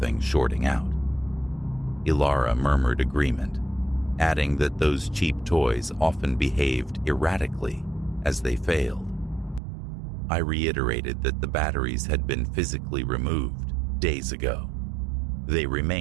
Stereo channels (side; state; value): left; drops out; at 9.6 s